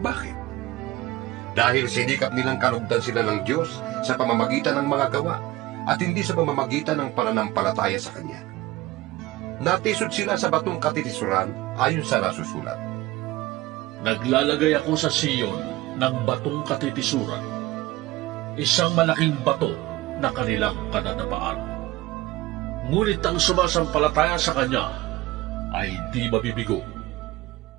Dahil sinikap nilang kalugdan sila ng Diyos sa pamamagitan ng mga gawa at hindi sa pamamagitan ng pananampalataya sa Kanya. Natisod sila sa batong katitisuran ayon sa nasusulat. Naglalagay ako sa Siyon ng batong katitisuran, isang malaking bato na kanilang kadadapaan. Ngunit ang sumasampalataya sa Kanya ay di mabibigo.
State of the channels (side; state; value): left; quieter; 18.0 dB